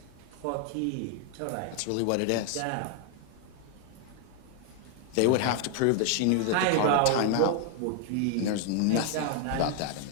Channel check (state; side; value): different; both; correlation 0.00